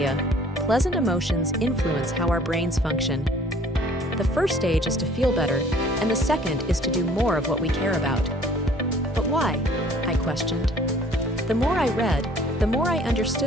pleasant emotions influence how our brains function. The first stage is to feel better, and the second is to do more of what we care about. But why? I questioned. The more I read, the more I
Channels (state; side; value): normal; both; correlation 0.54